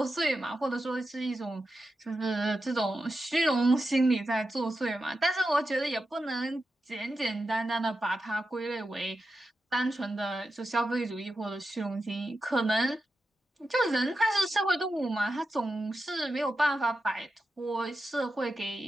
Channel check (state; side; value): normal; both; correlation 0.90